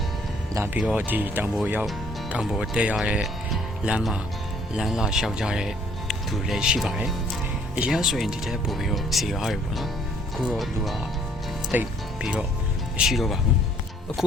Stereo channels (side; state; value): both; normal; correlation 0.61